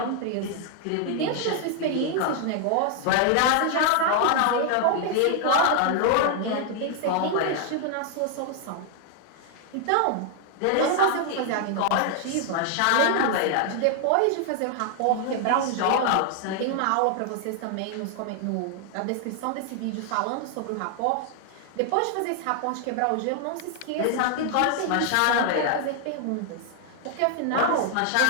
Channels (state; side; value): different; both; correlation 0.00